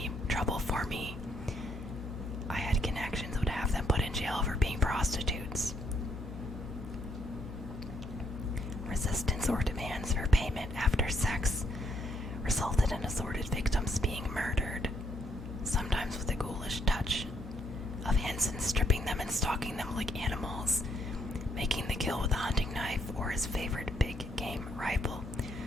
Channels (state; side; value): normal; both; correlation 0.73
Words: trouble for me, I had connections, would have them put in jail for being prostitutes. Resistance or demands for payment after sex resulted in assorted victims being murdered, sometimes with a ghoulish touch of Hansen stripping them and stalking them like animals, making the kill with a hunting knife or his favorite big game rifle.